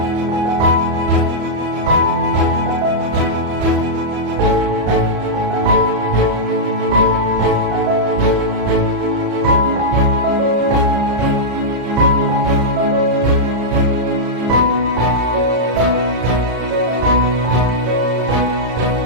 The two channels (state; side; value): late; left; 34 ms